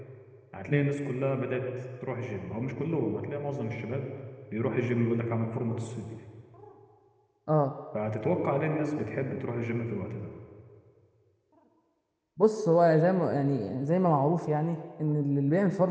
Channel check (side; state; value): both; identical; correlation 1.00